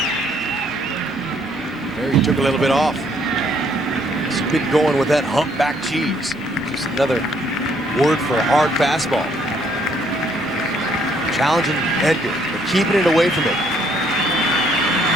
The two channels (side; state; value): both; normal; correlation 0.67